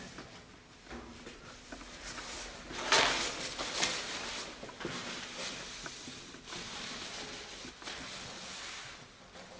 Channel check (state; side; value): identical; both; correlation 1.00